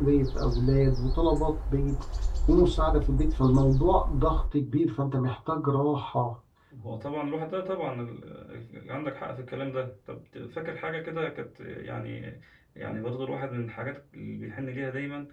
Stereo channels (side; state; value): both; identical; correlation 1.00